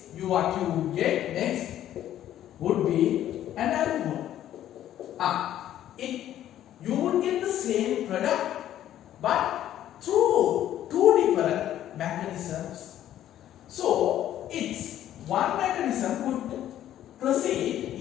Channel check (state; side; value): quieter; right; 11.9 dB